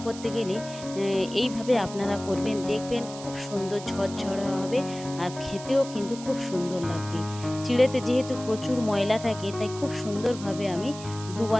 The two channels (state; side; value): noise; right; hiss, 14 dB below the sound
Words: করতে গেলে এইভাবে আপনারা করবেন, দেখবেন খুব সুন্দর ঝরঝরে হবে আর খেতেও কিন্তু খুব সুন্দর লাগবে। চিড়েতে যেহেতু প্রচুর ময়লা থাকে, তাই খুব সুন্দরভাবে আমি